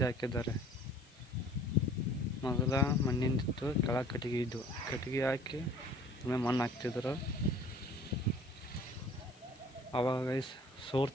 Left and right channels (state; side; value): noise; left; hiss, 27 dB below the sound